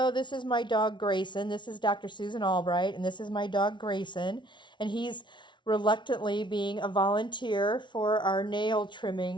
this is my dog Grayson. This is Dr. Susan Albright, and this is my dog Grayson. And he's reluctantly being a volunteer for our nail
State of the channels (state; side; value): late; right; 0.23 ms